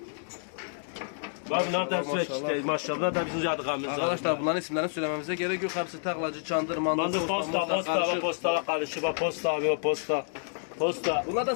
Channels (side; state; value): right; silent; digital silence